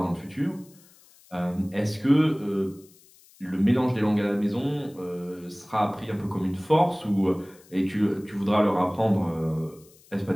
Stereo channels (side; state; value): left; noise; hiss, 27 dB below the sound